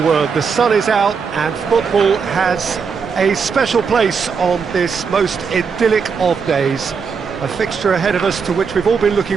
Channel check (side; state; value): left; quieter; 5.8 dB